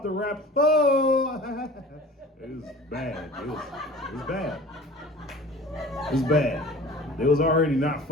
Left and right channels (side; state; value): both; normal; correlation 0.43